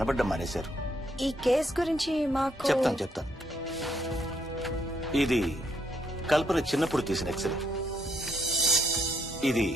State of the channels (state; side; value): normal; both; correlation 0.73